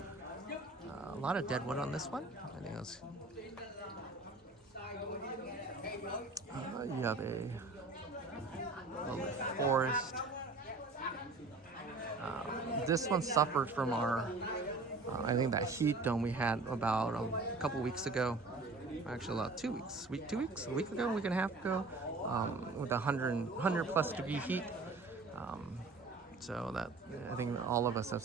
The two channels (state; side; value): quieter; left; 3.6 dB